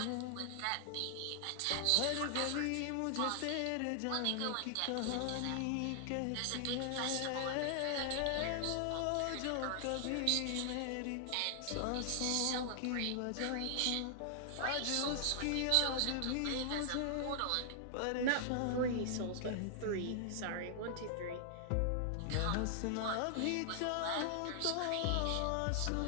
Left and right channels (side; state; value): both; different; correlation 0.00